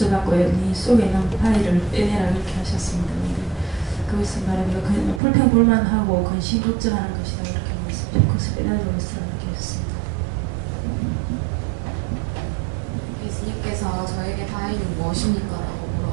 네 속에 있는 파일을 빼내라 이렇게 하셨습니다. 근데 그것을 말하면 불평불만하고 근심 걱정하는 것이다 이렇게 말씀하셨고 그것을 빼내도록 이렇게 하셨습니다. 예수님께서 저에게 바위는 무엇입니까? 라고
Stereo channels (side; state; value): left; drops out; at 5.2 s